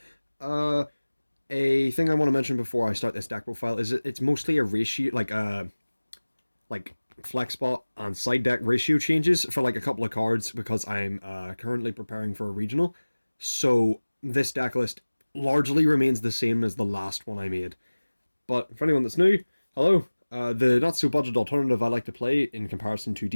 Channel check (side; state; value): both; inverted; correlation -1.00